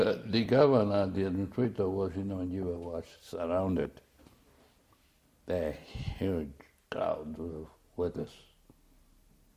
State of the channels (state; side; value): identical; both; correlation 1.00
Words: governor, the administrator was in Nigeria, was surrounded by a huge crowd of workers,